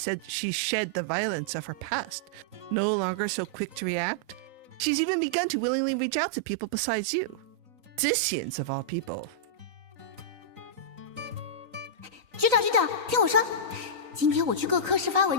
the violence of her past. No longer so quick to react, she's even begun to willingly reach out to people besides you. Disians of all people. 局长，听我说，今天我去各科室发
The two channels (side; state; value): left; late; 3.9 ms